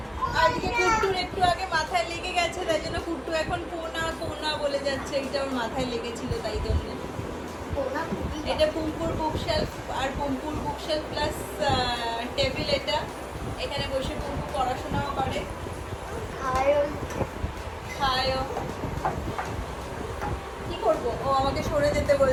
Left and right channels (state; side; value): identical; both; correlation 1.00